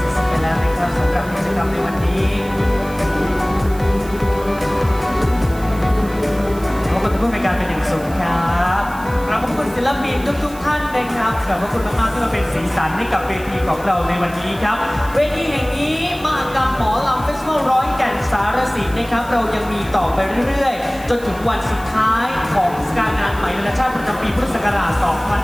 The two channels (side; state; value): right; noise; hiss, 20 dB below the sound